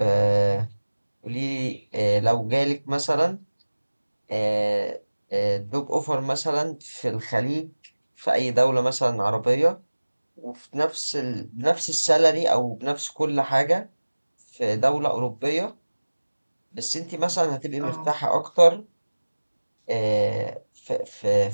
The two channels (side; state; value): both; inverted; correlation -1.00